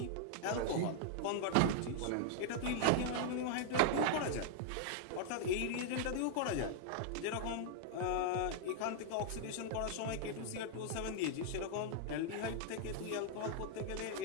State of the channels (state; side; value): different; both; correlation -0.01